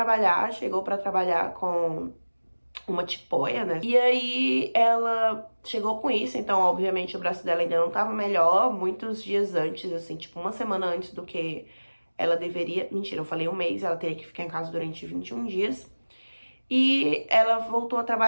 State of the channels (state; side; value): inverted; both; correlation -1.00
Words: chegou pra trabalhar com uma tipóia, né? E aí ela chegou com isso, então obviamente o braço dela ainda não tava melhor, muitos dias antes, assim, tipo uma semana antes do que ela deveria, mentira, eu falei um mês, ela teria que ficar em casa durante 21 dias. E ela voltou a